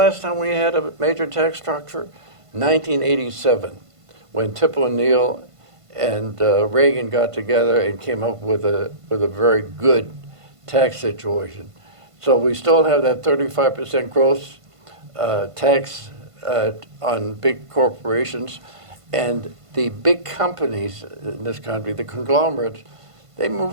time we had a major tax structure? 1987, when Tip O'Neill and Reagan got together and came up with a very good tax situation. So we still have that 35% gross tax on big corporations, and the big companies in this country, the conglomerates, they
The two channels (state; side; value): late; left; 1.5 ms